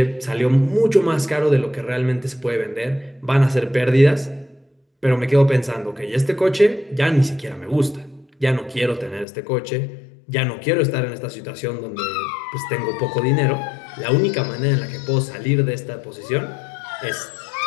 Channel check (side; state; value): right; drops out; at 9.2 s